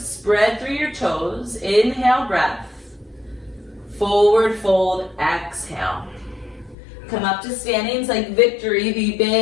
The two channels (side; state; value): right; drops out; at 6.8 s